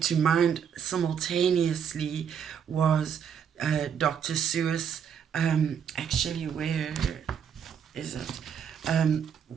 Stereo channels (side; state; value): left; quieter; 7.8 dB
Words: to mind simultaneously was Dr. Seuss, actually, where is it? And